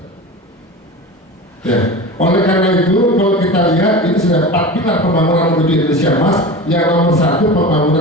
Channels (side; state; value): both; normal; correlation 0.30